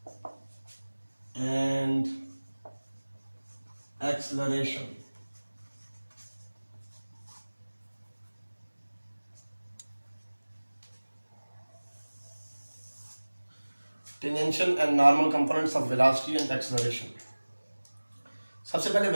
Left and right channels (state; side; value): inverted; both; correlation -1.00